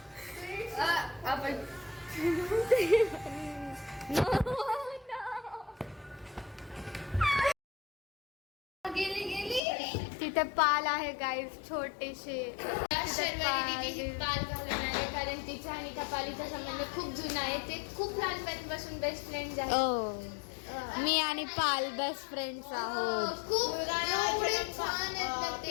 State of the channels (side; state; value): right; drops out; at 9.6 s